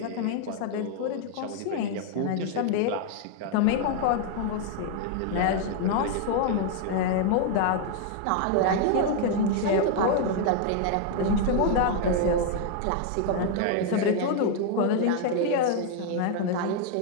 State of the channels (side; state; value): both; different; correlation 0.00